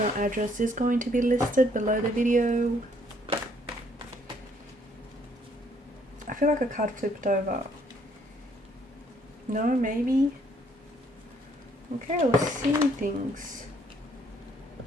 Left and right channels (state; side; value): normal; both; correlation 0.66